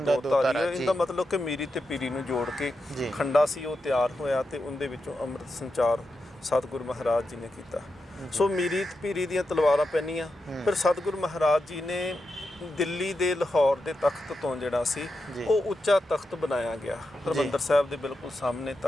ਧਾਰੀ ਹੈ। ਇਹਦਾ ਮਤਲਬ ਕਿ ਮੀਰੀ ਤੇ ਪੀਰੀ ਨੂੰ ਜੋੜ ਕੇ ਖੰਡਾ ਸੀ ਉਹ ਤਿਆਰ ਹੋਇਆ ਤੇ ਉਹਦੇ ਵਿੱਚੋਂ ਅੰਮ੍ਰਿਤ ਸੰਚਾਰ ਸਤਿਗੁਰੂ ਮਹਾਰਾਜ ਜੀ ਨੇ ਕੀਤਾ। ਸੋ ਮੀਰੀ ਤੇ ਪੀਰੀ ਦੀਆਂ ਤਲਵਾਰਾਂ ਪਹਿਨੀਆਂ। ਫਿਰ ਸਤਿਗੁਰੂ ਮਹਾਰਾਜ ਜੀ ਨੇ ਦਿੱਲੀ ਦੇ ਲਾਹੌਰ ਦੇ ਤਖਤ ਤੋਂ ਜਿਹੜਾ ਸੀ ਉਹ ਉੱਚਾ ਤਖਤ ਬਣਾਇਆ ਗਿਆ, ਹਰਿਮੰਦਰ ਸਾਹਿਬ ਦੇ ਬਿਲਕੁਲ ਸਾਹਮਣੇ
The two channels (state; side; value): normal; both; correlation 0.87